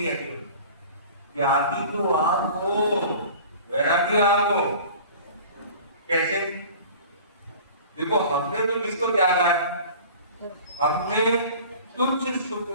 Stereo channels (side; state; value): both; inverted; correlation -0.43